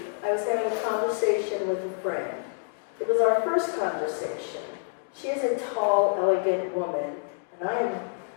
I was having a conversation with a friend. It was our first conversation. She is a tall, elegant woman, and I am,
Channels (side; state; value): right; silent; digital silence